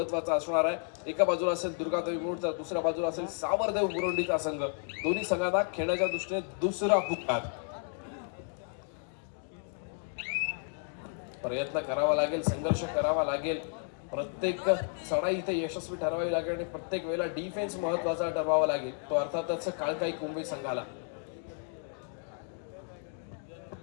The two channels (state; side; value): silent; right; 56 dB below the other